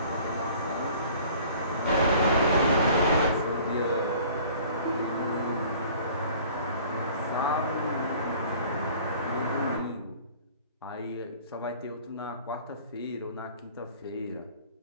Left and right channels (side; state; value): both; inverted; correlation -0.50